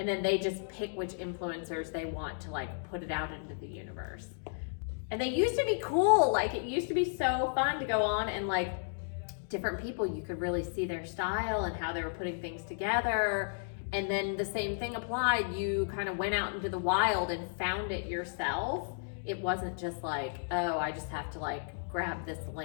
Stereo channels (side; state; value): right; silent; digital silence